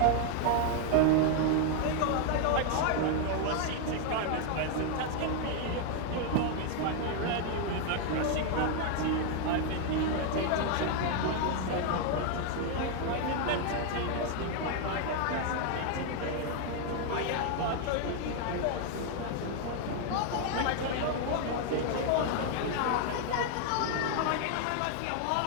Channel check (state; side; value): different; both; correlation 0.00